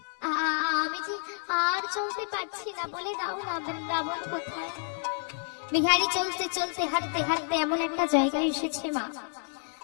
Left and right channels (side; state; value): right; silent; 58 dB below the other